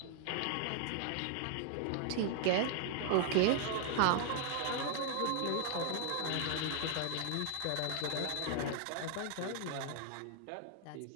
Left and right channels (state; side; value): different; both; correlation 0.00